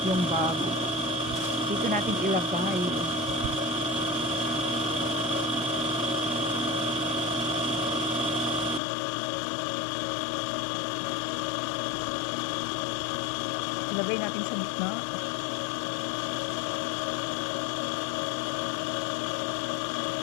yung bag. Dito natin ilagay. Ilagay natin sa gitna.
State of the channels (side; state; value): right; drops out; at 8.8 s